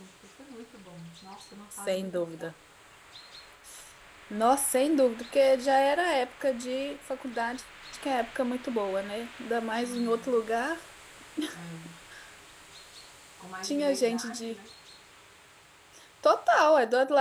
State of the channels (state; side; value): identical; both; correlation 1.00